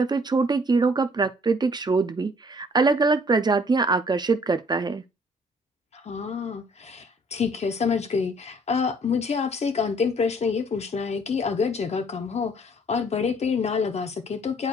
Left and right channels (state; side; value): normal; both; correlation 0.59